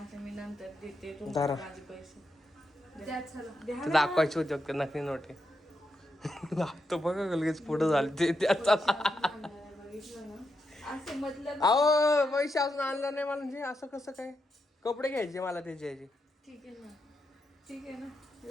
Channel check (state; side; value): normal; both; correlation 0.84